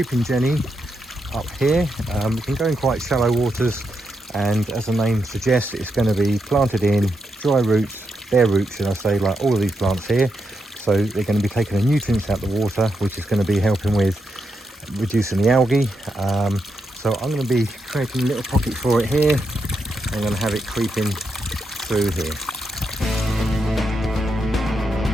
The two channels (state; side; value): normal; both; correlation 0.83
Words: jenny up here. It can go in quite shallow waters, and as the name suggests, it's going to be planted in dry roots, bare roots should I say, like all of these plants here. So they're going to be taking the nutrients out of the water, which is going to be helping with reducing the algae. So I'm going to be creating a little pocket for it here. I'm going to have it creeping through here.